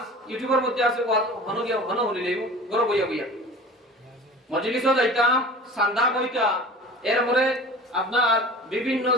ইউটিউবের মধ্যে আছে ওয়াজ হন গিয়া হন হলিলে ঘর বইয়া বইয়া মজলিসও যাইতাম সান্দা কইতা এরপরে আপনার বিভিন্ন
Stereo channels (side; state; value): both; normal; correlation 0.40